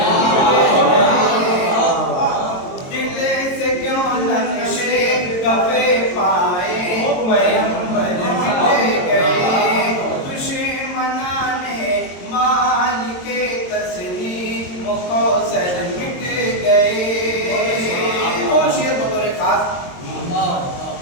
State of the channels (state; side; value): late; right; 22 ms